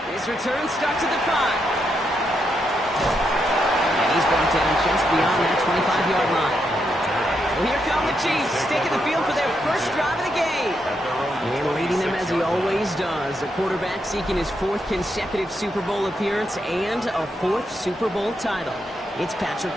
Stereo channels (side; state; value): both; normal; correlation 0.81